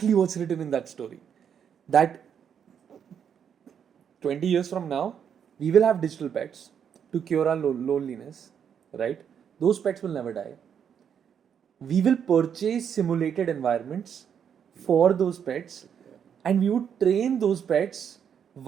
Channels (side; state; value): left; quieter; 8.0 dB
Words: what's written in that story. That 20 years from now, we will have digital pets to cure our loneliness, right? Those pets will never die. We will purchase simulated environments for those pets, and we would train those pets